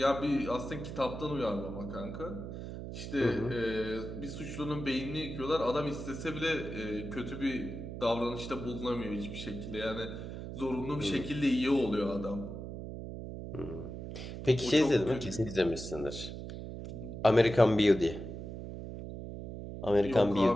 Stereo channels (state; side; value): noise; right; hum, 8 dB below the sound